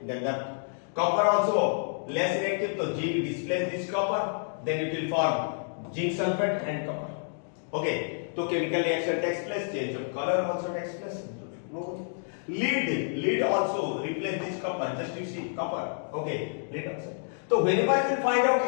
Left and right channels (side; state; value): right; silent; digital silence